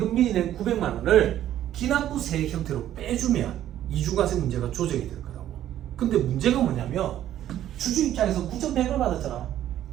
미리 낸 900만 원을 기납부세 형태로 빼주면 이중과세 문제가 조정이 될 거라고. 근데 문제가 뭐냐면 주주 입장에서 9,100을 받았잖아.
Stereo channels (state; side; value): quieter; left; 12.0 dB